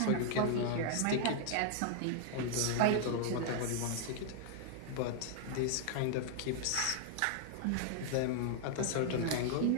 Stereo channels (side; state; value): both; different; correlation 0.00